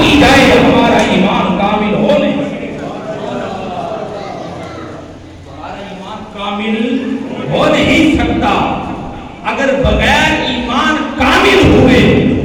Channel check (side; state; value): both; identical; correlation 1.00